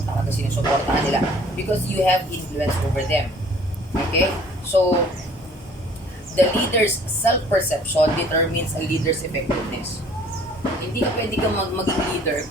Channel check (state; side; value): normal; both; correlation 0.54